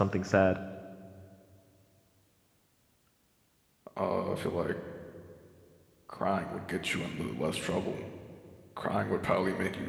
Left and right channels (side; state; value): both; identical; correlation 1.00